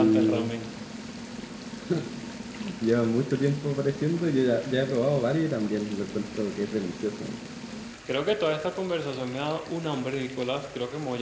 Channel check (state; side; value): identical; both; correlation 1.00